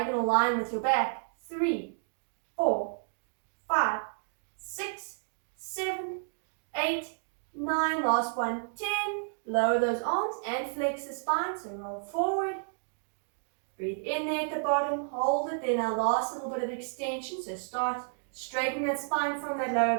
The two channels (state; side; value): silent; left; digital silence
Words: line with your back. 3, 4, 5, 6, 7, 8, 9, last one, 10. Lower those arms and flex the spine, so roll forward. Breathe in there at the bottom, hold it, then our last little bit of extension, so start straightening that spine from that lower